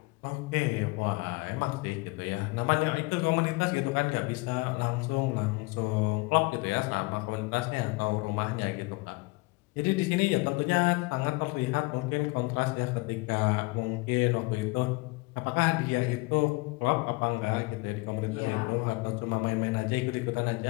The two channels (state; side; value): quieter; right; 25.0 dB